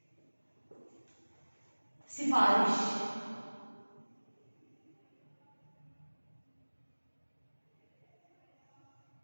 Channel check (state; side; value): inverted; both; correlation -1.00